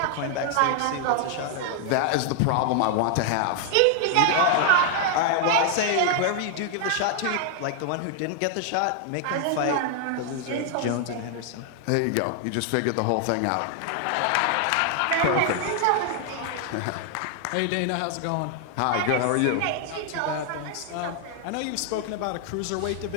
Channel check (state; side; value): different; both; correlation 0.00